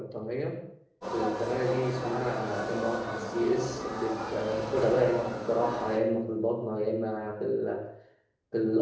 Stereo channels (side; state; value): both; identical; correlation 1.00